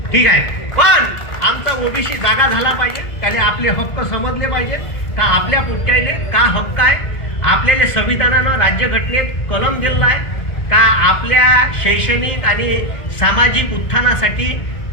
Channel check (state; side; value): late; right; 2.1 ms